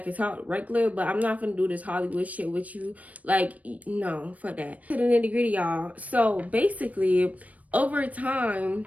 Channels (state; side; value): late; left; 0.070 ms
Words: can talk regular, but I'm not gonna do this Hollywood shit with you. Like, no, fuck that. To the nitty gritty, y'all. So basically, over time,